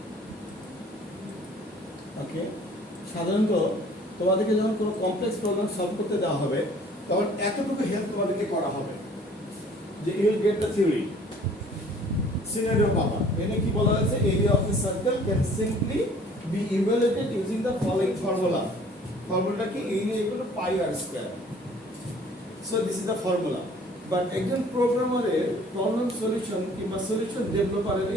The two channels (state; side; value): normal; both; correlation 0.53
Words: ওকে, সাধারণত তোমাদেরকে যখন কোনো কমপ্লেক্স প্রবলেম সলভ করতে দেওয়া হবে তখন এতটুকু হেল্প তোমাদেরকে করা হবে যে you will get the theory scenario পাবা। এখানে কি বলা হয়েছে? Area of a circle can simply be evaluated using the following formula. ফর্মুলাটা কি? Area equal to pi r square. So this is the formula. But একজন প্রোগ্রামারের প্রবলেম সলিউশন কিংবা সলিউশন ডেভেলপারের